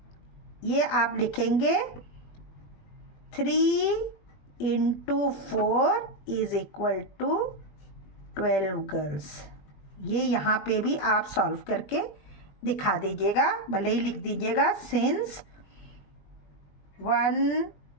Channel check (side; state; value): right; late; 20 ms